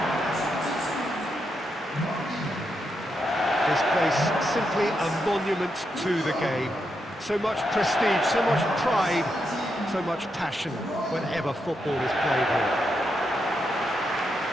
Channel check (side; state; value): both; normal; correlation 0.83